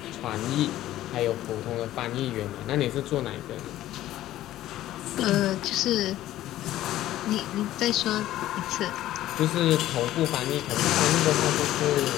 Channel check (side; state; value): right; quieter; 14.1 dB